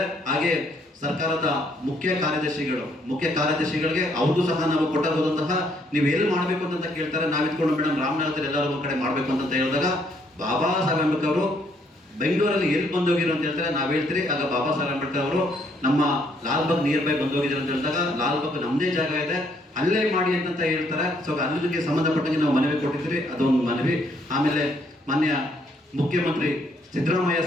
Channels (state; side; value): normal; both; correlation 0.69